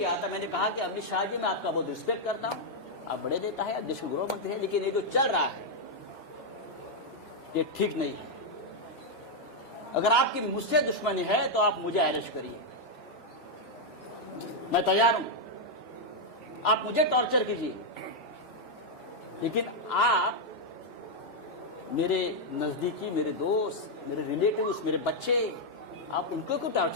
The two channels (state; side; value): normal; both; correlation -0.01